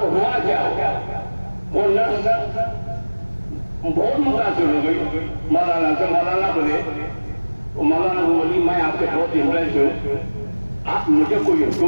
ہوا کیا ہو، وہ نرس بہت متاثر ہو گئی مولانا سے. مولانا بولے، مولانا بولی میں آپ سے بہت امپریس ہوں، آپ مجھے کوئی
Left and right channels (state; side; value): inverted; both; correlation -1.00